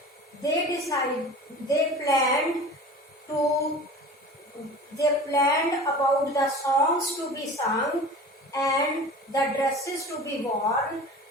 they planned about the songs to be sung and the dresses to be worn.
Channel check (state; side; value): normal; both; correlation 0.38